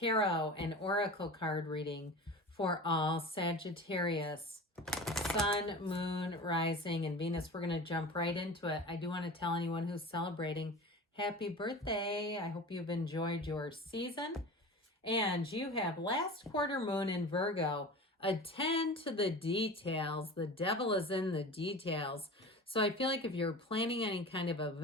and oracle card reading for all Sagittarius, Sun, Moon, Rising, and Venus. We're going to jump right into it. I do want to tell anyone who's celebrating happy birthday. I hope you've enjoyed your season. And you have last quarter moon in Virgo. Attend to the details. The devil is in the details. So I feel like if you're planning any kind of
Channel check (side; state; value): both; normal; correlation 0.34